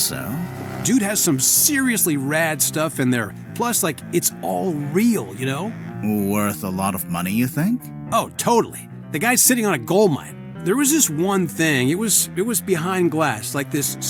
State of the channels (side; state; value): both; identical; correlation 1.00